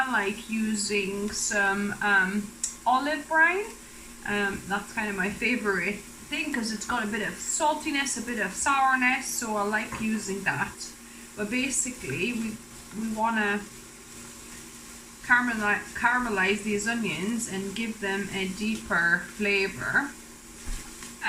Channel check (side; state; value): both; identical; correlation 1.00